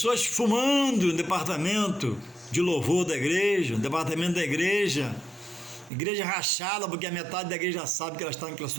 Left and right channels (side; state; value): left; drops out; at 5.9 s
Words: fumando no departamento de louvor da igreja, no departamento da igreja rachada, porque a metade da igreja sabe que ela está naquela